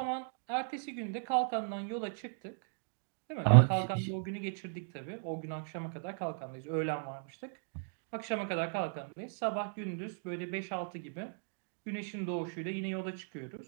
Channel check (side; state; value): left; silent; digital silence